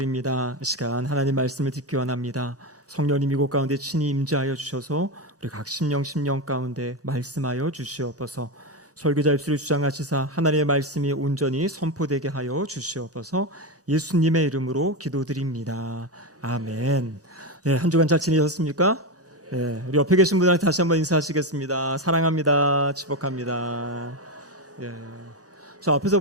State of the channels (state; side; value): normal; both; correlation 0.13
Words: 이 시간 하나님 말씀을 듣기 원합니다. 성령님 이곳 가운데 친히 임재하여 주셔서 우리 각 심령 가운데 말씀하여 주시옵소서. 설교자 입술을 주장하시사 하나님의 말씀이 온전히 선포되게 하여 주시옵소서. 예수님의 이름으로 기도드립니다. 아멘. 네, 한 주간 잘 지내셨습니까? 네, 우리 옆에 계신 분들한테 다시 한번 인사하시겠습니다. 사랑합니다. 축복합니다. 예. 자, 앞에서